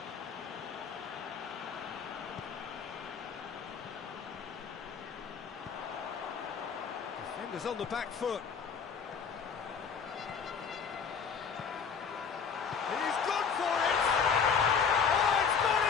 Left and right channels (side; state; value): right; quieter; 6.3 dB